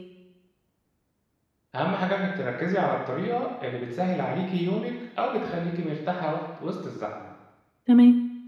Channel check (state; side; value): identical; both; correlation 1.00